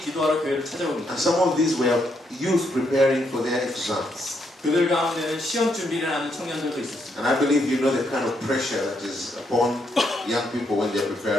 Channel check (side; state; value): both; normal; correlation 0.76